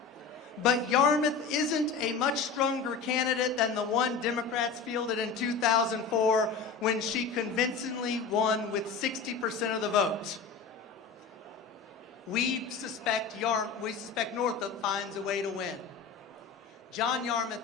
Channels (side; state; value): right; quieter; 5.3 dB